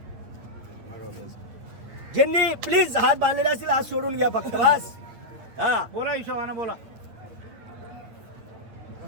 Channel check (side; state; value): left; late; 8.9 ms